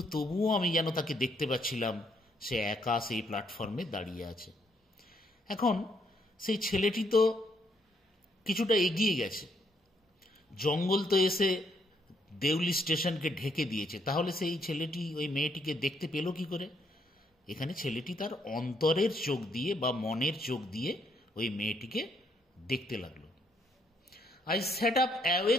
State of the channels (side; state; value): both; normal; correlation 0.72